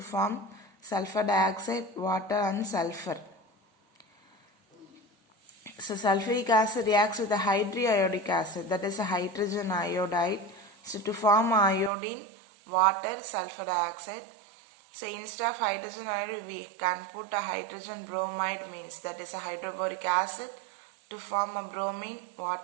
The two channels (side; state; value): left; drops out; at 11.9 s